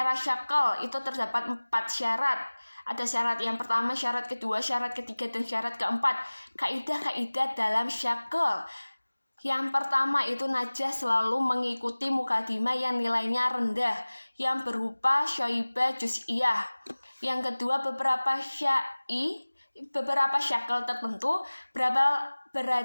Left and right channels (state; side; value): inverted; both; correlation -1.00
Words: syakl itu terdapat 4 syarat. Ada syarat yang pertama, syarat kedua, syarat ketiga, dan syarat keempat. Kaidah-kaidah dalam syakl. Yang pertama itu najah selalu mengikuti mukadimah yang nilainya rendah, yang berupa syoibah juz'iyah. Yang kedua, beberapa syakl tertentu